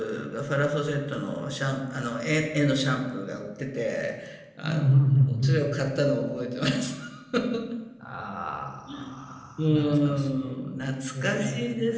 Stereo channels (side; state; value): both; identical; correlation 1.00